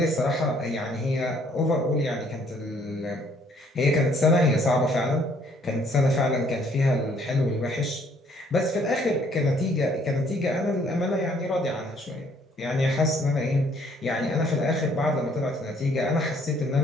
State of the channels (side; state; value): both; normal; correlation 0.63